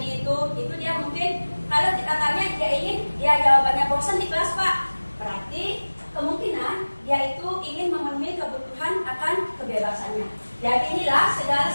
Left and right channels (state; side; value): inverted; both; correlation -1.00